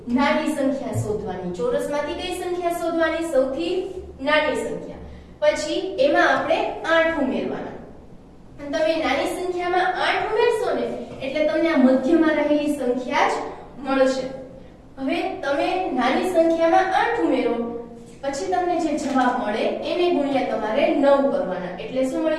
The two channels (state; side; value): identical; both; correlation 1.00